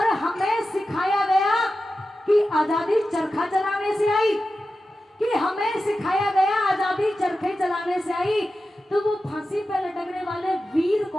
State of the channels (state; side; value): normal; both; correlation 0.92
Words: हमें सिखाया गया कि आजादी चरखा चलाने से आई, कि हमें सिखाया गया आजादी चरखे चलाने से आई। तो वो फांसी पर लटकने वाले वीर